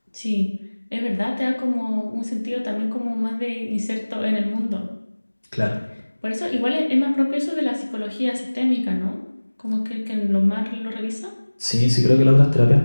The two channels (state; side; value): inverted; both; correlation -1.00